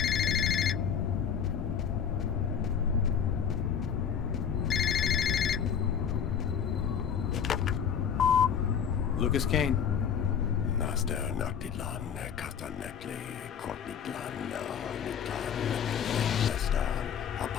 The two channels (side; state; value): right; quieter; 7.7 dB